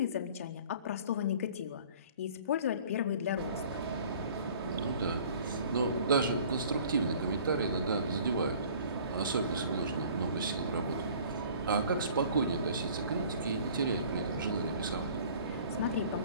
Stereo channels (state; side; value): inverted; both; correlation -0.50